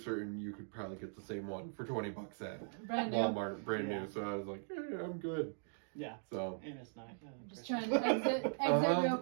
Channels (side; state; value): left; silent; digital silence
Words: you could probably get the same one for $20 at Brand new. Walmart, brand Yeah. new. So I was like, "Yeah, I'm good." Yeah. So And it's not. Just trying to exit real